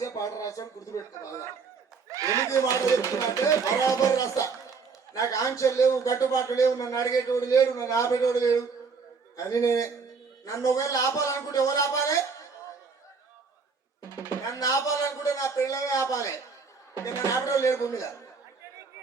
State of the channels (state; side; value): quieter; left; 5.1 dB